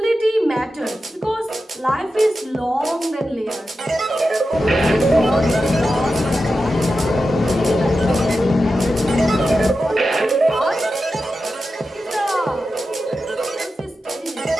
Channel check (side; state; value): both; normal; correlation 0.91